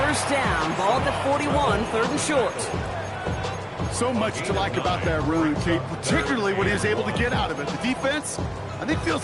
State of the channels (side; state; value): both; identical; correlation 1.00